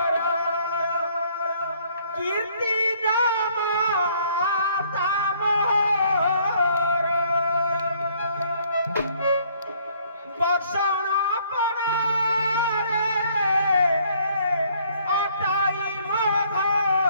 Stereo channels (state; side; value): inverted; both; correlation -0.63